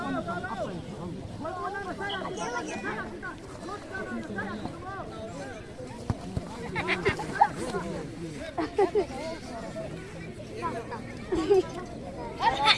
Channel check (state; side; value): identical; both; correlation 1.00